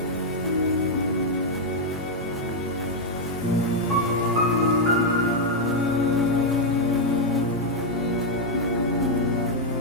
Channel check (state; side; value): normal; both; correlation 0.00